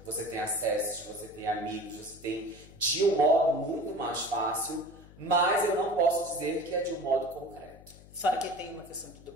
Você tem acessos, você tem amigos, você tem de um modo muito mais fácil. Mas eu não posso dizer que é de um modo concreto. Fora que tem uma questão do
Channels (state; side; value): noise; left; hum, 21 dB below the sound